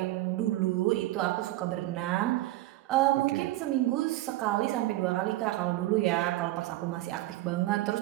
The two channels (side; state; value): left; quieter; 16.7 dB